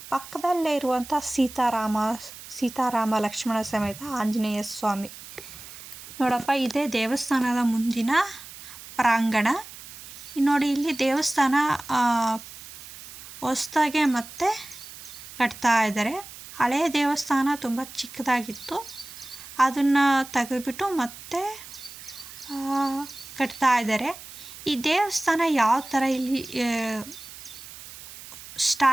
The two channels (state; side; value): noise; right; hiss, 15 dB below the sound